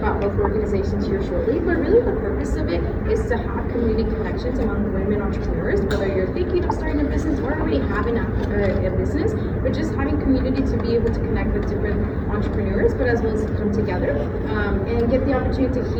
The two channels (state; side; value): identical; both; correlation 1.00